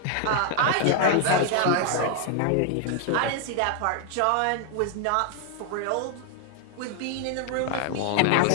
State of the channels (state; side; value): different; both; correlation 0.00